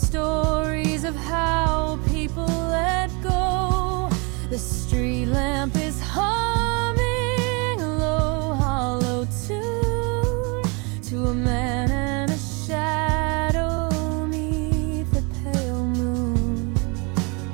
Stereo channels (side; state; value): left; quieter; 31.1 dB